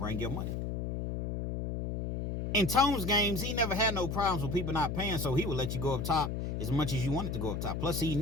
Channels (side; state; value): left; noise; hum, 3 dB below the sound